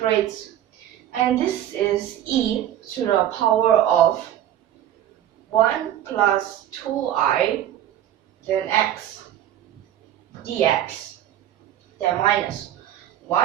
and this is e to the power of 1 plus 2i, then x dx, then minus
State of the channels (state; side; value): quieter; left; 11.8 dB